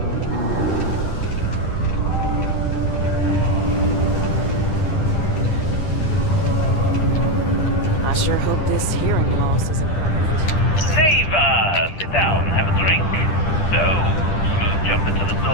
I sure hope this hearing loss isn't... Neva! Sit down, have a drink. So, smooth jump into the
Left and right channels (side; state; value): right; late; 10 ms